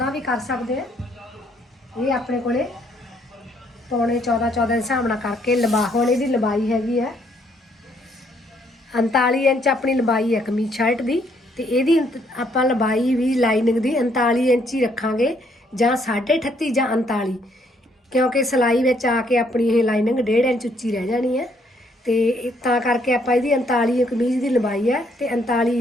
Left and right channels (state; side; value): normal; both; correlation 0.69